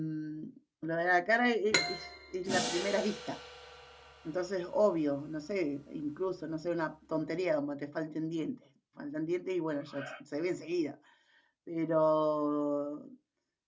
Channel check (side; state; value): both; identical; correlation 1.00